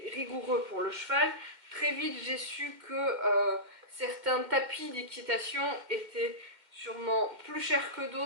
rigoureux pour le cheval. Très vite, j'ai su que certains tapis d'équitation étaient sûrement plus chers que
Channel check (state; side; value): late; left; 2.1 ms